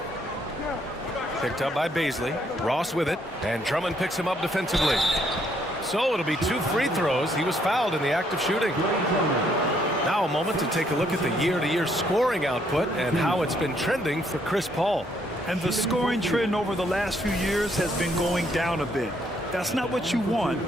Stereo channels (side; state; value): both; normal; correlation 0.70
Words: Picked up by Baisley. Ross with it. And Drummond picks him up defensively. So it'll be 2 free throws. He was fouled in the act of shooting. Now a moment to take a look at the year-to-year scoring output and how it's been trending for Chris Paul. And the scoring trend over the last few years has been going down a bit. That's not what you want,